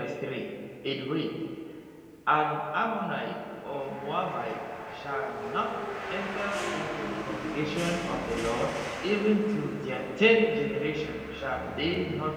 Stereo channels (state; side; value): identical; both; correlation 1.00